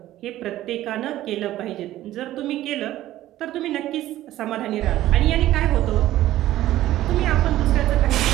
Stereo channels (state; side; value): quieter; left; 14.4 dB